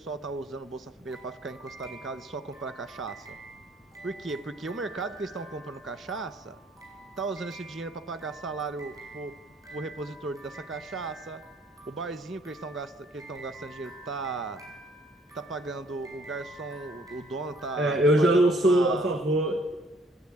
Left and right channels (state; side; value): normal; both; correlation 0.61